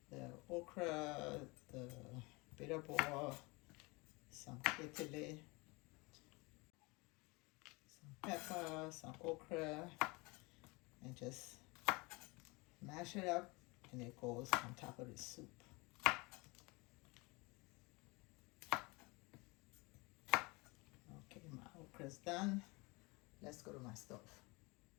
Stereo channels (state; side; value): quieter; right; 26.1 dB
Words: the okra, the bitter ball, some kitile, some pepper, some okra, and just mash it up and it goes on top of the soup. part is done. Let's go to my stove.